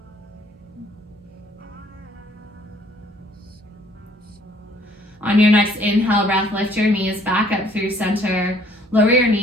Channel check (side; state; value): both; normal; correlation 0.60